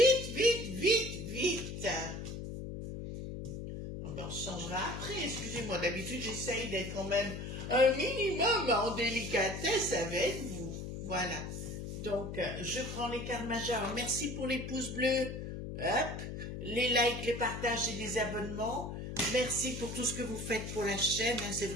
vite, vite, vite. On se changera après, excusez-moi, d'habitude j'essaye d'être quand même un minimum en délicatesse avec vous. Voilà, donc je prends les cartes majeures, merci pour les pouces bleus, hop, les likes, les partages et les abonnements, merci pour tout ce que vous faites pour la chaîne, hein, c'est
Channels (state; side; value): noise; left; hum, 7 dB below the sound